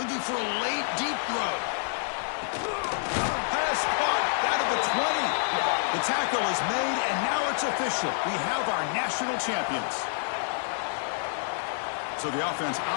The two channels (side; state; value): right; silent; digital silence